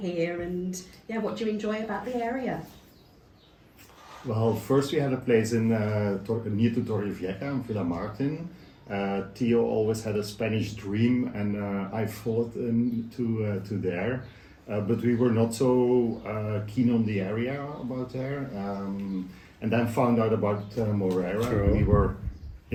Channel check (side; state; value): both; identical; correlation 1.00